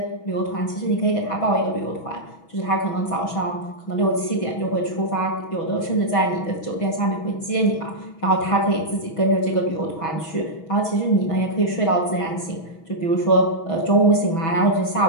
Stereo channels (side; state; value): right; late; 6.2 ms